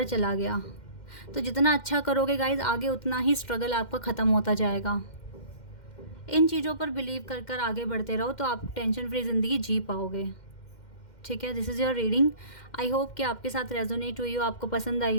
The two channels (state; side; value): late; right; 2.1 ms